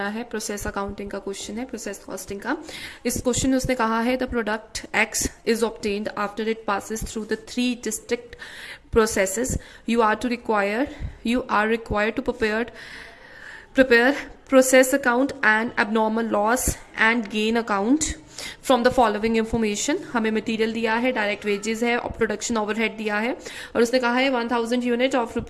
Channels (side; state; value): both; identical; correlation 1.00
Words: है प्रोसेस अकाउंटिंग का क्वेश्चन है, प्रोसेस कॉस्टिंग का। इस क्वेश्चन में उसने कहा है the product X is obtained after it passes through the 3 district processes. You are required to prepare process account and abnormal loss and gain account from the following information. हमें मटेरियल दिया है, डायरेक्ट वेजेस है और प्रोडक्शन ओवरहेड दिया है, और उसने कहा है 1000 unit of